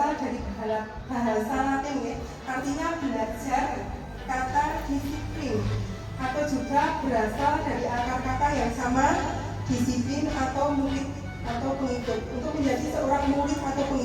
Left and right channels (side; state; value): both; identical; correlation 1.00